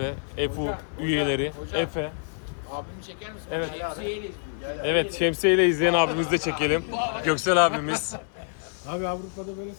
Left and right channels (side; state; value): right; silent; digital silence